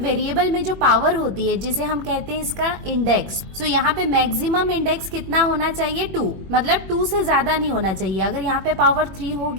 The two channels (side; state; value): left; late; 21 ms